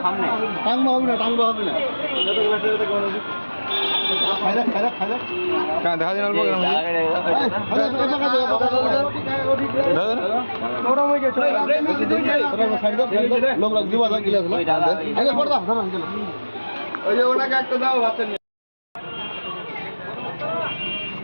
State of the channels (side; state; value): both; inverted; correlation -1.00